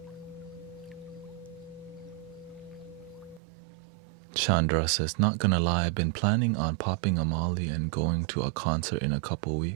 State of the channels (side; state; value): left; drops out; at 3.4 s